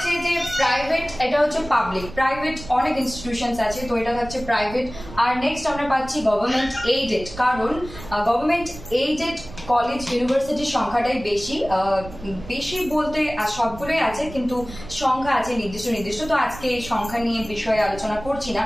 যে প্রাইভেট, এটা হচ্ছে পাবলিক। প্রাইভেট অনেক ইনস্টিটিউশন আছে, তো এটা হচ্ছে প্রাইভেট। আর নেক্সট আমরা পাচ্ছি গভর্নমেন্ট এইডেড, কারণ গভর্নমেন্ট এইডেড কলেজ ইউনিভার্সিটির সংখ্যাটাই বেশি বলতে সবগুলোই আছে, কিন্তু সংখ্যা আছে নির্দিষ্ট। তো আজকে এই সংখ্যা নিয়ে বিষয়ে আলোচনা করছি না,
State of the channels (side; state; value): right; noise; rumble, 15 dB below the sound